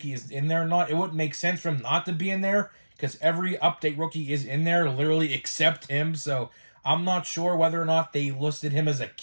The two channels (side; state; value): both; inverted; correlation -1.00